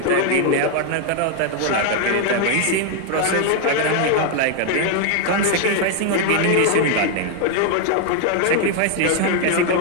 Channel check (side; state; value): both; different; correlation 0.00